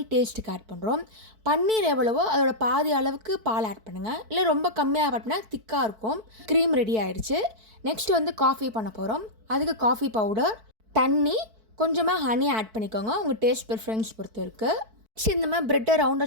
டேஸ்ட்டுக்கு ஆட் பண்ணுறோம். பன்னீர் எவ்வளவோ அதோட பாதி அளவுக்கு பால் ஆட் பண்ணுங்கள். இல்லை ரொம்ப கம்மியாக ஆட் பண்ணால் திக்காக இருக்கும். க்ரீம் ரெடி ஆகிடுச்சு. நெக்ஸ்ட் வந்து காஃபி பண்ண போகிறோம். அதுக்கு காஃபி பவுடர், தண்ணி, கொஞ்சமாக ஹனி ஆட் பண்ணிக்கோங்க. உங்கள் டேஸ்ட் ப்ரிஃபரன்ஸ் பொறுத்து இருக்குது. இந்த மாதிரி ப்ரெட்டை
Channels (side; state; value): left; late; 4.6 ms